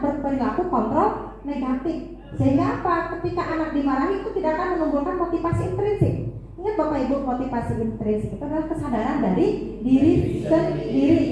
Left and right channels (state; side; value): identical; both; correlation 1.00